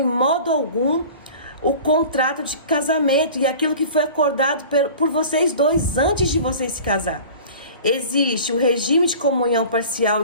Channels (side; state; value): both; inverted; correlation -0.40